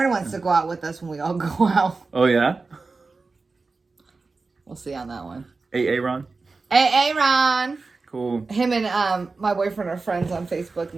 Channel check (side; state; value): left; quieter; 4.0 dB